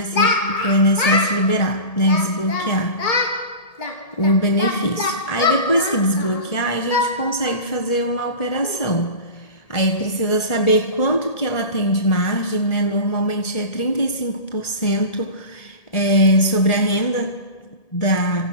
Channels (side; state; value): right; late; 1.8 ms